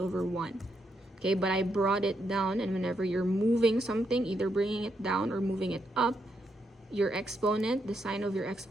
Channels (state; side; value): normal; both; correlation 0.80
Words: 1. Okay, but I brought it down, and whenever you're moving something, either bringing it down or moving it up, your exponent, the sign of your